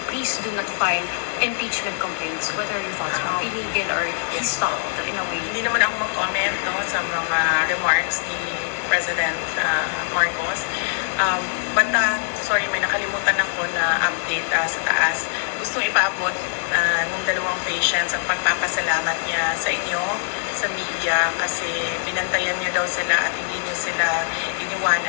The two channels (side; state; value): right; silent; digital silence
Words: please do not file impeachment complaints. What are your thoughts, ma'am? Illegal or he stopped in a way? Hindi naman ako mag-comment sa mga remarks ni President Marcos. But sorry, may nakalimutan ako na update sa taas. Gustong ipaabot ng dalawang patients ang pagpapasalamat niya sa inyo, sa media, kasi binantayan niyo daw sila at hindi niyo sila